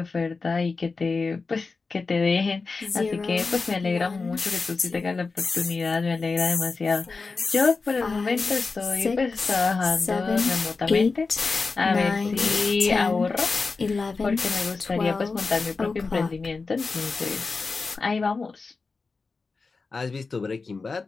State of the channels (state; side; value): quieter; right; 4.2 dB